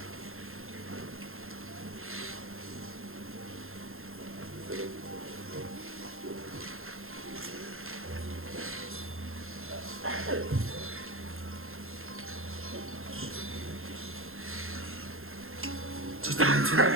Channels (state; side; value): late; left; 0.61 ms